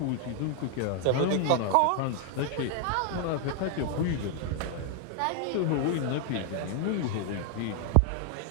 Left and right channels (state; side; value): different; both; correlation 0.00